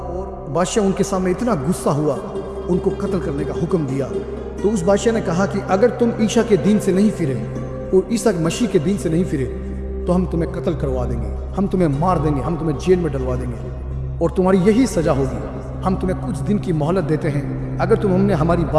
بادشاہ ان کے سامنے اتنا غصہ ہوا، ان کو قتل کرنے کا حکم دیا۔ تو اس بادشاہ نے کہا کہ اگر تم عیسیٰ کے دین سے نہیں پھرے اور عیسیٰ مسیح کے دین سے نہیں پھرے تو ہم تمہیں قتل کروا دیں گے، ہم تمہیں مار دیں گے، ہم تمہیں جیل میں ڈلوا دیں گے، اور تمہاری یہی سزا ہوگی۔ ہم تمہیں کچھ دن کی مہلت دیتے ہیں، اگر ہم نے ہماری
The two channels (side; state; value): both; identical; correlation 1.00